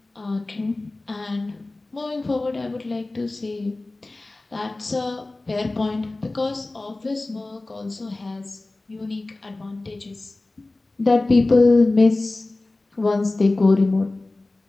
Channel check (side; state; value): right; quieter; 3.0 dB